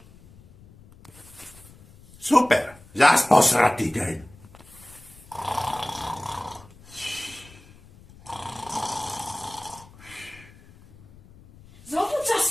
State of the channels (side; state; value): left; noise; rumble, 23 dB below the sound